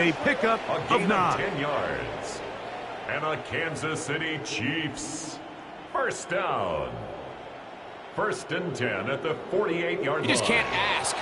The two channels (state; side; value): identical; both; correlation 1.00